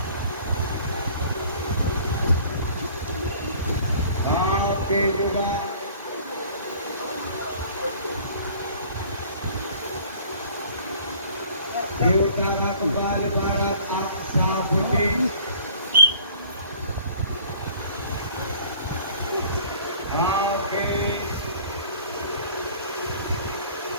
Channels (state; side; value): inverted; both; correlation -0.51